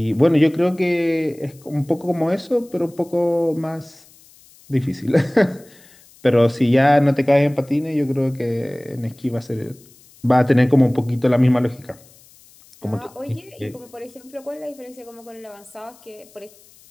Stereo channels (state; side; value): noise; left; hiss, 27 dB below the sound